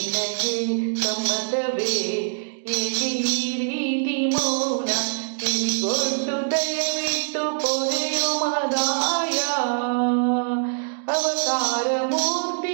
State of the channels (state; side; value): silent; left; 62 dB below the other